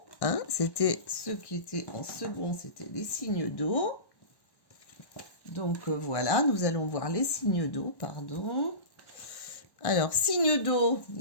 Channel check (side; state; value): right; late; 1.1 ms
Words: Hein, c'était ceux qui étaient en second, c'était les signes d'eau. Donc voilà, nous allons voir les signes d'eau, pardon. Alors, signes d'eau,